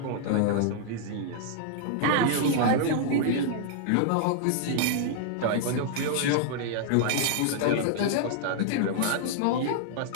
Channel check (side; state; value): both; different; correlation -0.01